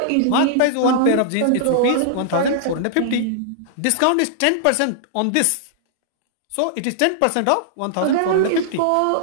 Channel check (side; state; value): both; different; correlation -0.01